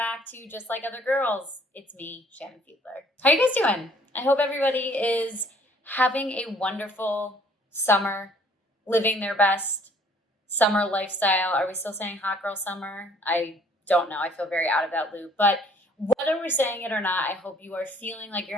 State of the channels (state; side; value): normal; both; correlation 0.59